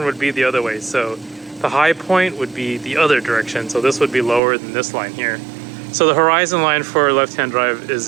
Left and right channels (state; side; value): drops out; left; at 4.4 s